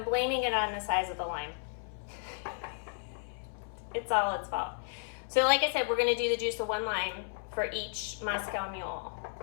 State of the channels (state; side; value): silent; right; 56 dB below the other